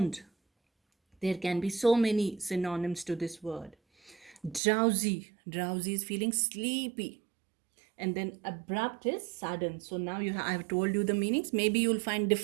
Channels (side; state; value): left; drops out; at 4.6 s